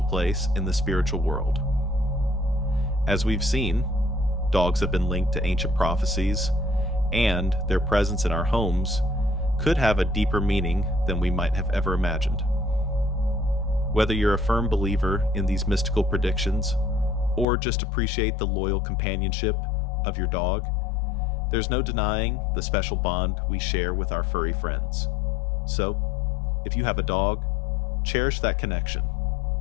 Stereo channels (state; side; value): drops out; right; at 17.4 s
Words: place in the spiritual world. As we've seen, dogs have been linked to ancient prophecies, and their presence in our homes could have a deeper meaning than we might have ever imagined. Whether you're a firm believer in these mystical predictions, or just appreciate the loyal companionship of your dog, there's no denying the special bond we share with our furry friends. So, if you have a dog, cherish that connection.